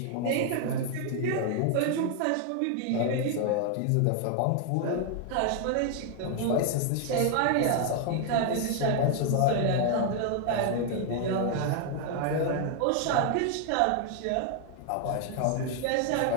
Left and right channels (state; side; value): different; both; correlation 0.00